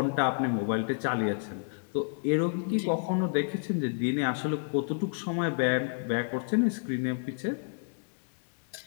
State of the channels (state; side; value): silent; right; digital silence